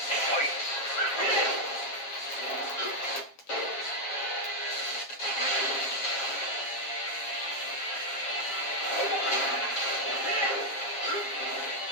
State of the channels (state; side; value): late; right; 7.4 ms